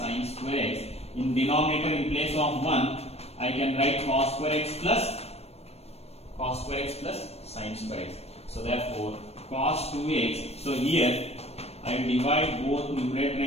square x. In denominator, in place of 1 I can write cos square x plus sin square x. So therefore cos 2x, so here I will divide both numerator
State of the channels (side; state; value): right; late; 0.30 ms